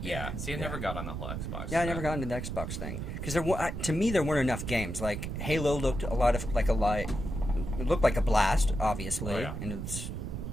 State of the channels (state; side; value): noise; right; rumble, 5 dB below the sound